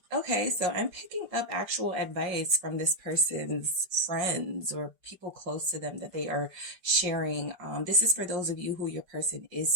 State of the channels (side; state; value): left; late; 5.5 ms